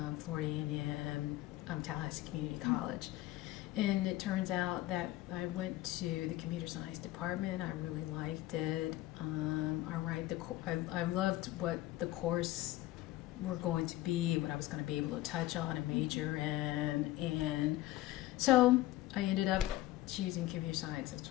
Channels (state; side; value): quieter; right; 16.1 dB